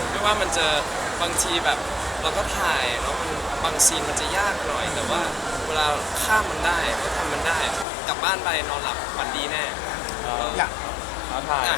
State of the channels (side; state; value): right; drops out; at 7.9 s